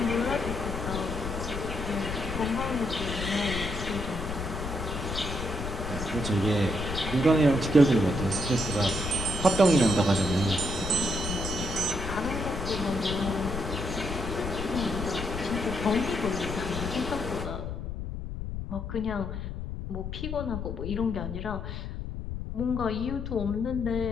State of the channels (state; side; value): noise; left; rumble, 6 dB below the sound